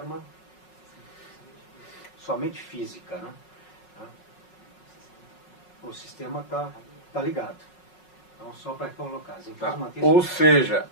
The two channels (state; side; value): late; right; 5.5 ms